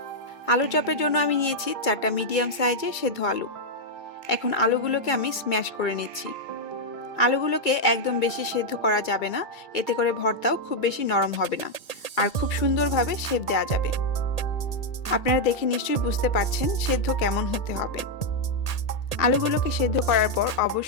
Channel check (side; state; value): right; late; 2.3 ms